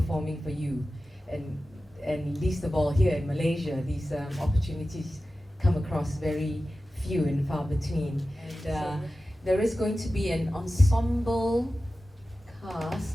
for you. And least of all here in Malaysia, these opportunities come across very few and far between. And there is going to be an ensemble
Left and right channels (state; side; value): normal; both; correlation 0.94